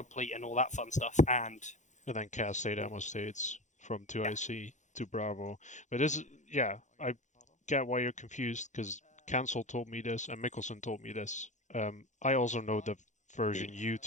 and all that fun stuff, and then CAS state ammo states from 2IC to Bravo. But this, I get why you're confused, because Cancel told me this, and Mickelson told me this. I also know the version you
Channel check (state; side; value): late; right; 0.35 ms